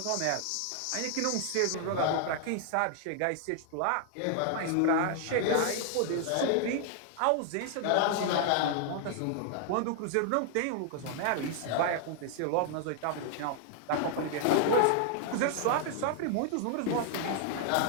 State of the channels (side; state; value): both; different; correlation 0.00